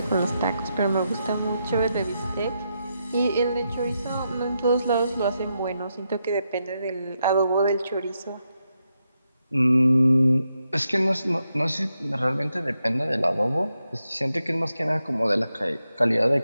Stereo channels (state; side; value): inverted; both; correlation -0.84